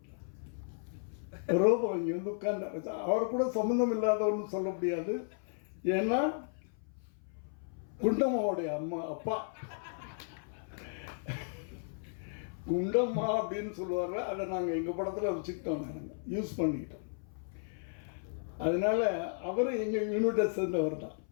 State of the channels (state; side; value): silent; right; 55 dB below the other